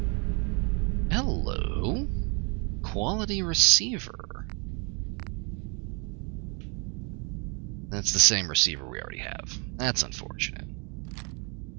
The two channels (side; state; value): left; quieter; 33.8 dB